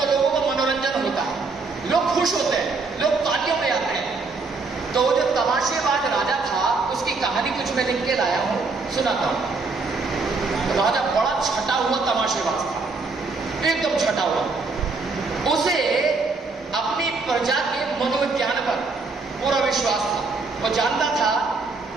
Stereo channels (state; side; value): quieter; left; 4.0 dB